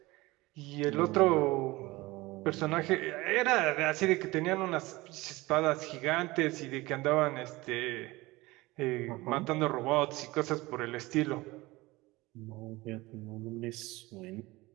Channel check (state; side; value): quieter; left; 20.9 dB